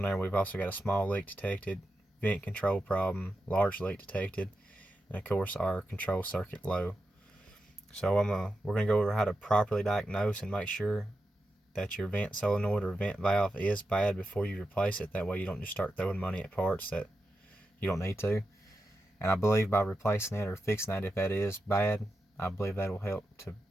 there, we've also got a small leak detected, vent control problem, large leak detected, and of course our control circuit low. So we're going to go over how to properly diagnose and make sure that your vent solenoid or vent valve is bad before you replace it. That way you don't just start throwing money at parts that you don't need to. And I believe by replacing it or fixing that, if that is bad, I believe that will help to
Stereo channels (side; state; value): both; normal; correlation 0.89